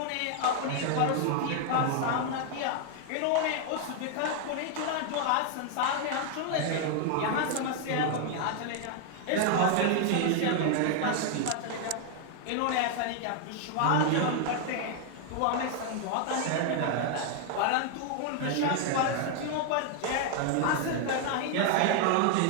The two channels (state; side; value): different; both; correlation 0.00